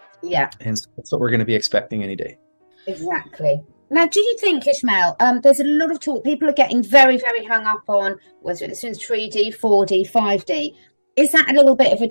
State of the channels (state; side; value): inverted; both; correlation -1.00